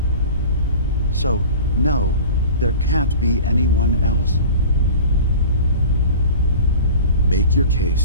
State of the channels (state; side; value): inverted; both; correlation -0.39